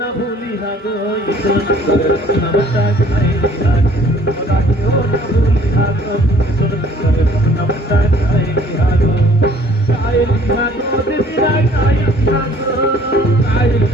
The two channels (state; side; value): normal; both; correlation 0.56